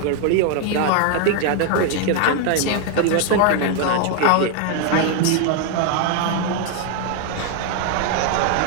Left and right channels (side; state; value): both; different; correlation 0.00